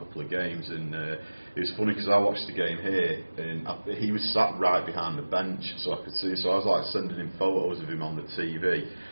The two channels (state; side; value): inverted; both; correlation -1.00